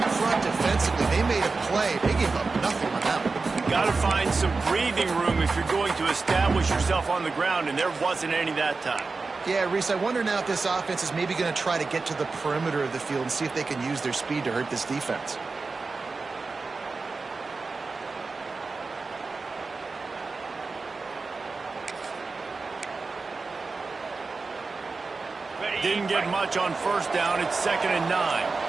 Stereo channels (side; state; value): left; quieter; 4.1 dB